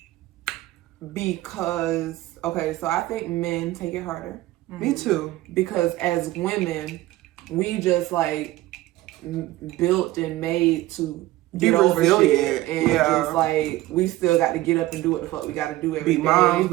because so I think men take it harder. Me too. Because as women, we just like built and made to get over shit, and just like we still got to get up and do what the fuck we got to do every day. Be moms,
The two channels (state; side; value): quieter; left; 17.0 dB